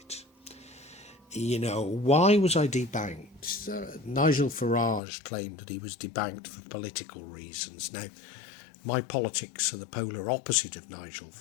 Why was I debanked? Nigel Farage claimed that he was debanked for political reasons. Now, my politics are the polar opposite of Nigel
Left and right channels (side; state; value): right; drops out; at 5.0 s